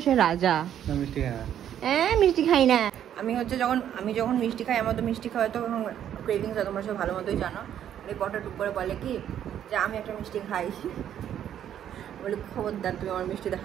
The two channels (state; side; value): quieter; left; 10.2 dB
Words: সে রাজা। মিষ্টি খাই না আমি। হচ্ছে যখন মিষ্টি খাই, আমার তো মিষ্টি খাওয়া তো ক্রেভিংস হয়, তোমরা সব ভালো মতোই জানো। রিপোর্টার টুক করে বলে কি যে আমি একটা মিষ্টি খাই, বলি খবরদার তুমি আমার মিষ্টিতে